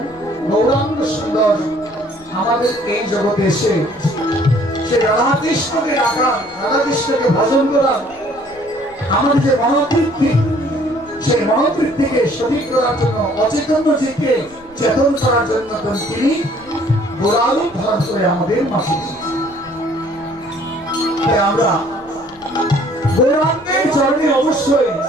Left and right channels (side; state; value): left; noise; rumble, 26 dB below the sound